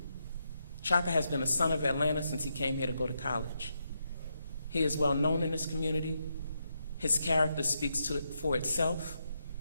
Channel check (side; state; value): both; inverted; correlation -0.82